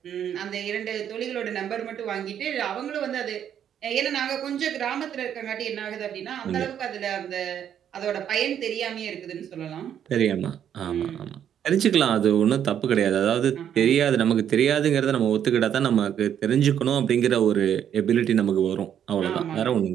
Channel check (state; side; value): quieter; left; 9.4 dB